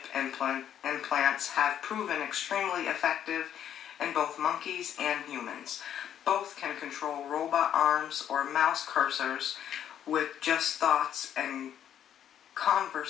implants have proven extremely effective in both monkeys and humans. Both can control robot arms or mouse cursors with just thoughts, and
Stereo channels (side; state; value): right; quieter; 9.9 dB